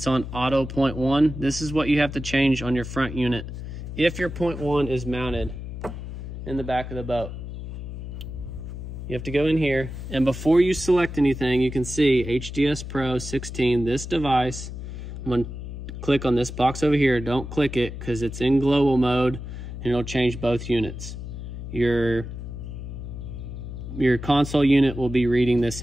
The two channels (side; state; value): left; noise; hum, 8 dB below the sound